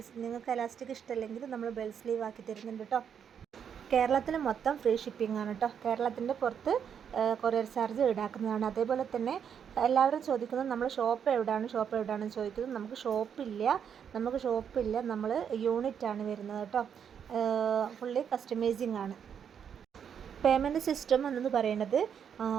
നിങ്ങൾക്ക് എലാസ്റ്റിക് ഇഷ്ടമല്ലെങ്കിൽ നമ്മൾ ബെൽ സ്ലീവ് ആക്കി തരുന്നുണ്ട് കേട്ടോ. കേരളത്തിൽ മൊത്തം ഫ്രീ ഷിപ്പിംഗ് ആണ് കേട്ടോ. കേരളത്തിൻ്റെ പുറത്ത് കൊറിയർ ചാർജ് ഈടാക്കുന്നതാണ്. അതേപോലെ തന്നെ എല്ലാവരും ചോദിക്കുന്നത് നമ്മൾ ഷോപ്പ് എവിടെയാണെന്ന് ചോദിക്കുന്നത്. നമുക്ക് ഷോപ്പില്ല, നമ്മൾ യൂണിറ്റാണ് വരുന്നത് കേട്ടോ. ഫുള്ളി കസ്റ്റമൈസിങ് ആണ്. പേയ്മെൻറ്റ് സിസ്റ്റം എന്ന് പറയുന്നത്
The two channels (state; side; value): quieter; left; 7.9 dB